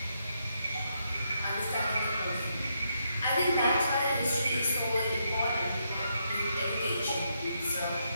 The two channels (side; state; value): both; inverted; correlation -0.78